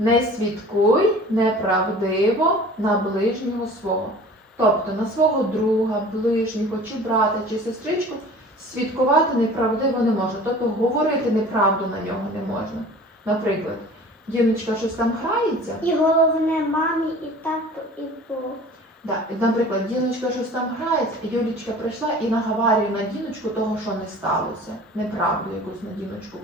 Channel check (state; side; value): normal; both; correlation 0.44